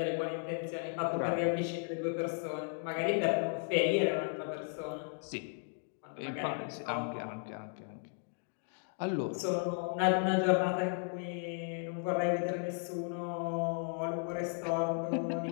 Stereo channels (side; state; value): right; silent; 54 dB below the other